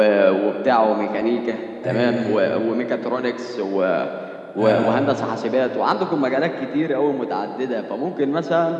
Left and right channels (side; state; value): both; identical; correlation 1.00